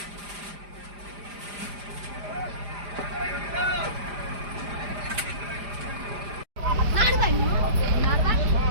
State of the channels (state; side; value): late; left; 4.9 ms